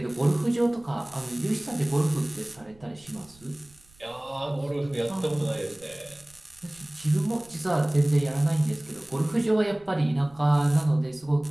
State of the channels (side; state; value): right; noise; rumble, 28 dB below the sound